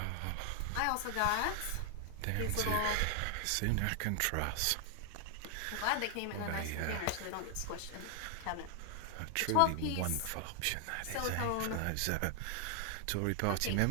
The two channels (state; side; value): different; both; correlation 0.00